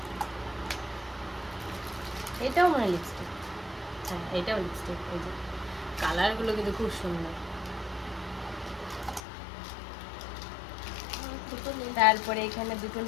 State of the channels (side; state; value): right; drops out; at 9.2 s